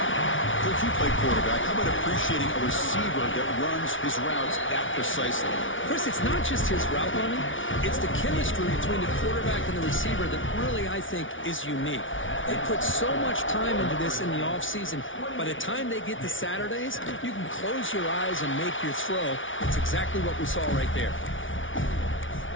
Coach, you play quarterback. How about appreciating a receiver that runs his routes that precisely? Chris, it's not just his route running. It's the chemistry between the quarterback and the receiver that really, I think, is unique. They put so much time into this in the offseason. By the time they get to Saturdays, you can close your eyes and make your throw. It's exactly what we saw right there.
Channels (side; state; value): right; late; 0.57 ms